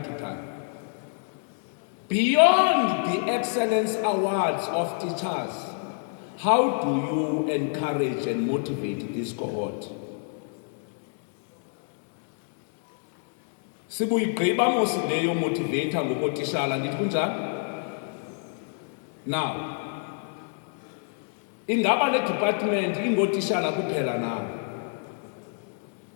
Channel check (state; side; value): silent; right; 60 dB below the other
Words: to time. Beyond the excellence awards of teachers, how do you encourage and motivate this cohort? Sibuyigqiba mos leyo motivator ngokotishala, andithi kunjalo? Now, ingaba le department ingotishala kuphela na?